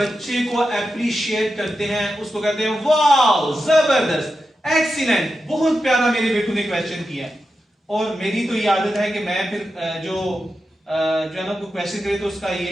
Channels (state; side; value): normal; both; correlation 0.90